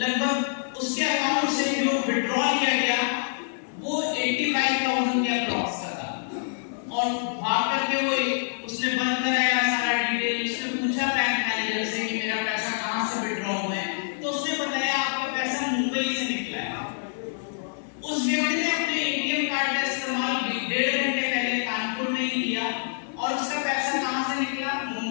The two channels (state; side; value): silent; right; 61 dB below the other